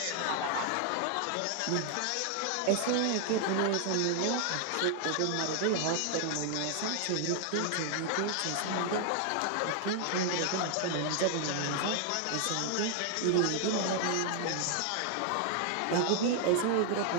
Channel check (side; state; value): both; different; correlation 0.00